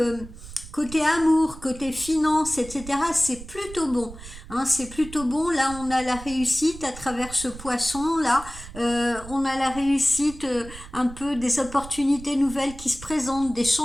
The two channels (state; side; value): noise; right; rumble, 15 dB below the sound